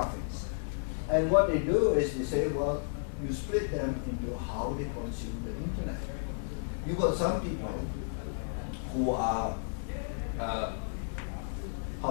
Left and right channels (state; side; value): silent; right; digital silence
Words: And what they do is they say, well, you split them into how they consume the internet. You've got some people who are